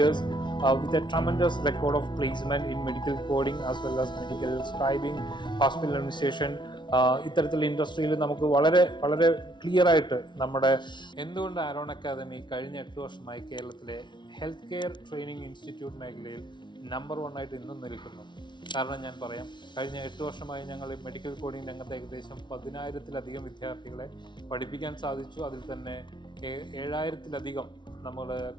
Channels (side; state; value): right; late; 0.23 ms